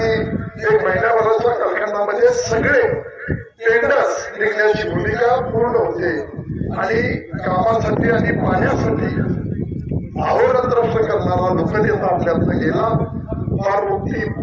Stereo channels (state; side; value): identical; both; correlation 1.00